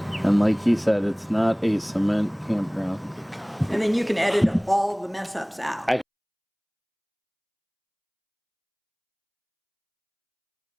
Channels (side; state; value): both; identical; correlation 1.00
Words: And like he said, it's not a cement campground. And then you can edit all the mess ups out.